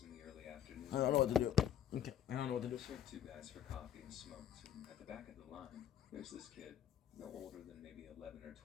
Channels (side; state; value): right; quieter; 10.5 dB